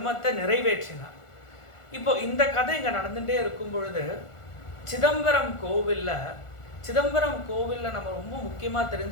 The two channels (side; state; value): right; late; 1.4 ms